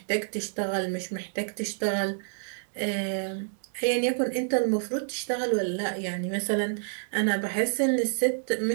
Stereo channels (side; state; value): left; silent; 59 dB below the other